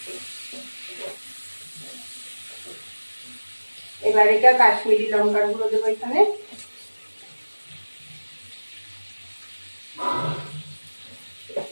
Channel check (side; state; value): both; inverted; correlation -1.00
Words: এবার এটা কাশ্মীরি লঙ্কার গুঁড়ো দেবো এখানে।